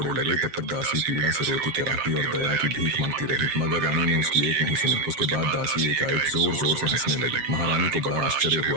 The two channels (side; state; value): left; late; 7.5 ms